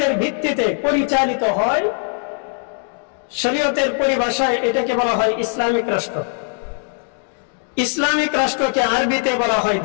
ভিত্তিতে পরিচালিত হয়, শরীয়তের পরিভাষায় এটাকে বলা হয় ইসলামিক রাষ্ট্র। ইসলামিক রাষ্ট্রকে আরবিতে বলা হয়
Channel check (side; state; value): right; silent; 58 dB below the other